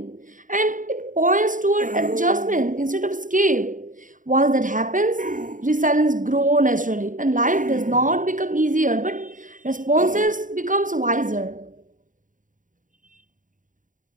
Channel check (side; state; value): left; late; 0.38 ms